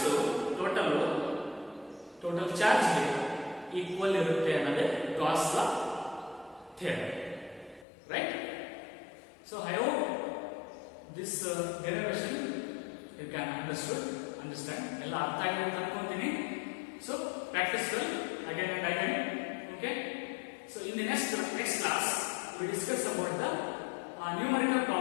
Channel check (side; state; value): right; drops out; at 7.9 s